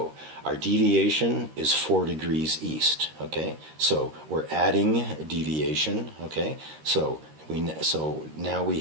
our deviation is 4 degrees east. Okay, so we're adding deviation. Okay, so now we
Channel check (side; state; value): left; late; 13 ms